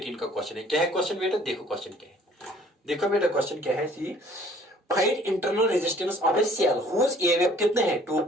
का क्वेश्चन है। क्या है क्वेश्चन बेटा, देखो क्वेश्चन क्या है, देखो बेटा क्वेश्चन क्या है, C find internal resistance of a cell whose EMF कितने हैं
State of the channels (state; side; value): normal; both; correlation 0.56